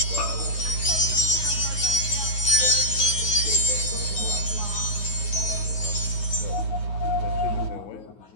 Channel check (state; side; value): late; right; 9.6 ms